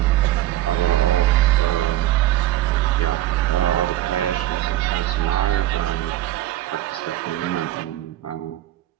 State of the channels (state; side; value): quieter; left; 14.3 dB